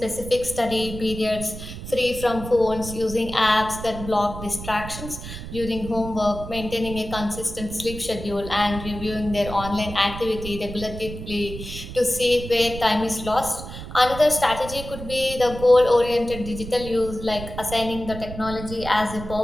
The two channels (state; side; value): noise; right; rumble, 10 dB below the sound